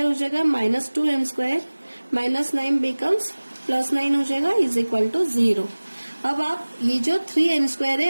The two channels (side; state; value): both; inverted; correlation -1.00